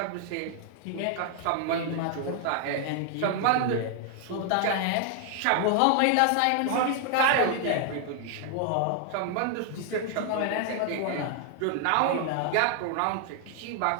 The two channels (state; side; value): different; both; correlation 0.00